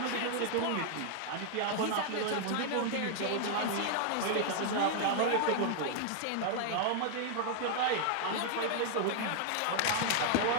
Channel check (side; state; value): both; different; correlation 0.00